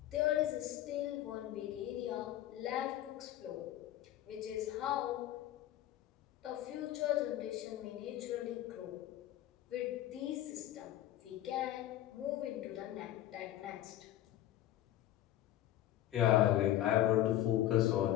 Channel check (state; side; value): quieter; right; 13.3 dB